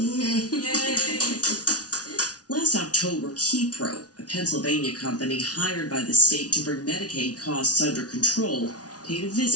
Last October, Kepro, a Pennsylvania company hired by the state to bring Medicaid costs under control, paid a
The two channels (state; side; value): late; right; 0.68 ms